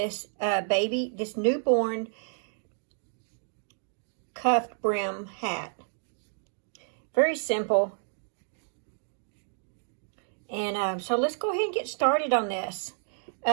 this newborn cuffed brim hat. Very simple. And so let's go ahead and get started on this.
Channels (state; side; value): silent; left; digital silence